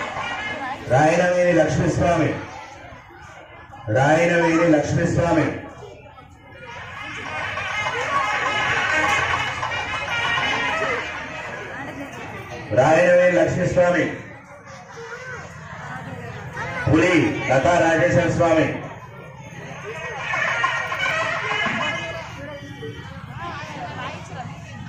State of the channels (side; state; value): both; identical; correlation 1.00